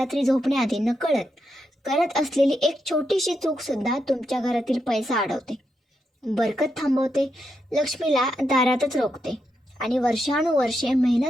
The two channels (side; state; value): both; normal; correlation 0.83